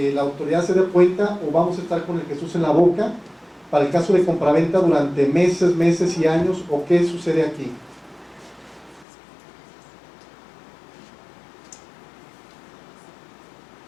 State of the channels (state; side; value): drops out; right; at 9.1 s